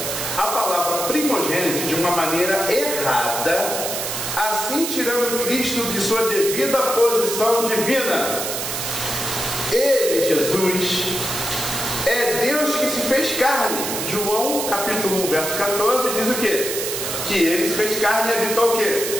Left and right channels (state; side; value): noise; right; hiss, 3 dB below the sound